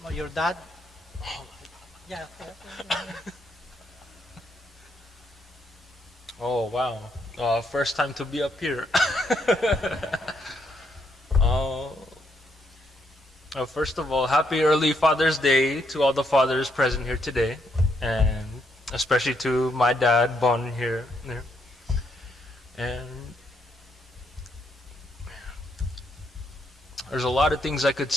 your dad? Yeah. Oh, wow. First time to be up here. First of all, happy early Father's Day to all the fathers present here today, and especially to my dad, Bon, here. And there's a lot of things I could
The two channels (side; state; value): both; normal; correlation 0.75